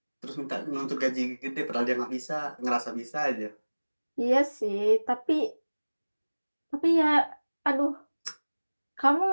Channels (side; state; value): both; inverted; correlation -1.00